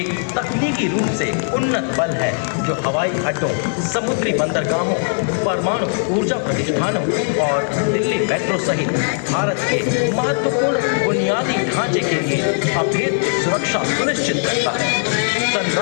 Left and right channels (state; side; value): silent; right; 67 dB below the other